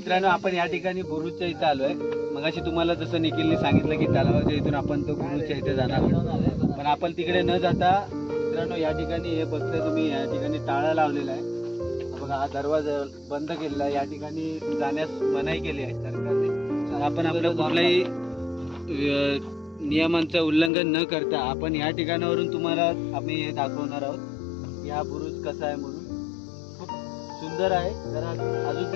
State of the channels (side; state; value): right; drops out; at 20.7 s